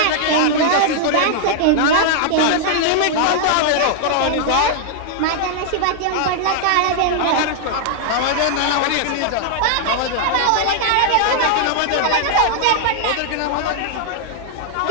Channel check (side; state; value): both; different; correlation -0.01